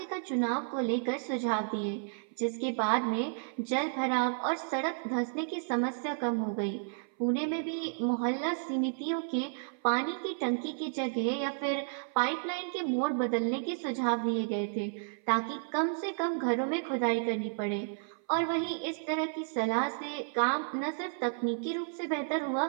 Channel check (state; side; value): silent; left; 56 dB below the other